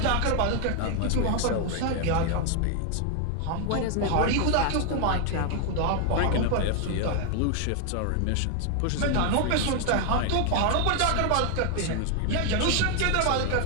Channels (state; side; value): different; both; correlation 0.00